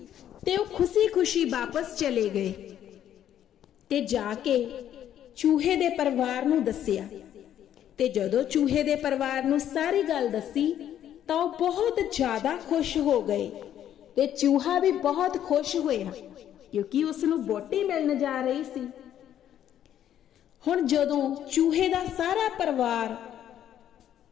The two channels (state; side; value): quieter; right; 10.7 dB